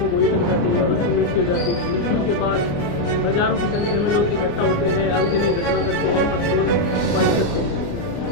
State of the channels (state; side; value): late; right; 29 ms